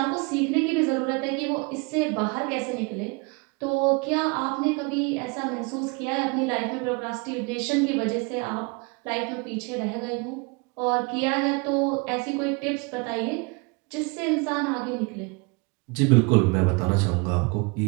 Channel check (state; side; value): quieter; left; 29.7 dB